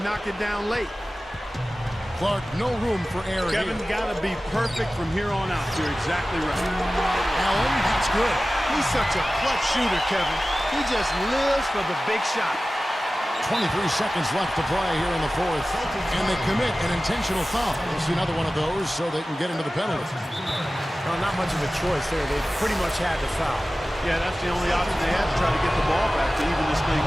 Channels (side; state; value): both; normal; correlation 0.96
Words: knock it down late. Clark, no room for error Kevin here. got to be perfect from here on out. You're exactly right. Allen, that's good. He's such a clutch shooter, Kevin. He just lives for the big shot. 23 seconds left to play here in the fourth. And they commit an intentional foul. We'll see another one of those so they can get into the penalty. Well, not much of a choice there. They pretty much had to foul. Yeah, that's the only option they had to try to get the ball back to even this thing